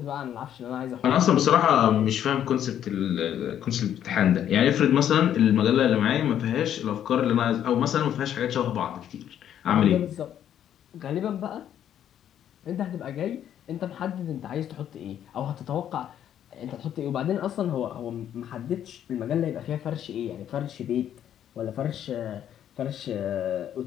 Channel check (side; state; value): right; quieter; 10.2 dB